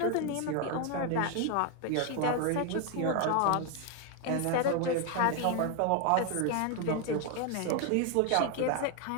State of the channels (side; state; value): both; different; correlation 0.01